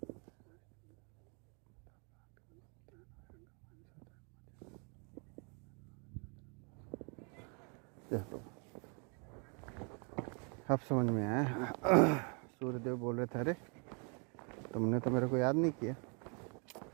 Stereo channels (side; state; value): left; quieter; 36.3 dB